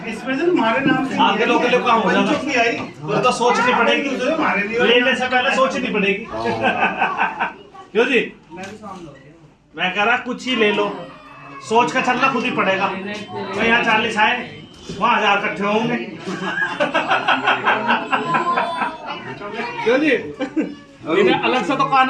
स्पेशल हमारे नाम से आगे लोग के काम हो जाएगा छुपी आई तो सोचनी पड़ेगी लेने से पहले सोचनी पड़ेगी क्यों जी मैं कह रहा कुछ ही ले लो सोच का चलना खुद ही पड़ेगा तो यहाँ 40 आए वहाँ 1000 इकट्ठे होंगे क्यों जी इन्हें अलग से तो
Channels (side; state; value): both; identical; correlation 1.00